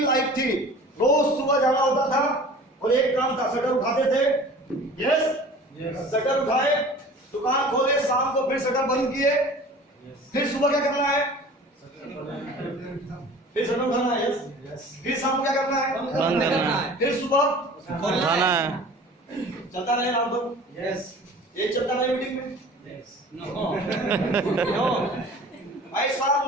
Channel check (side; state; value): both; normal; correlation 0.43